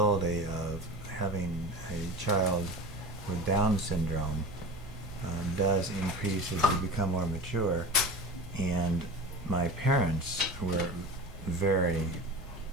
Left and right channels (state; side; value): normal; both; correlation 0.33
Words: of having a child with Down syndrome does increase as you become more mature, and my parents were very